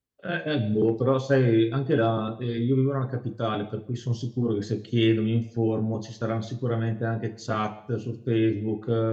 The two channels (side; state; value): both; identical; correlation 1.00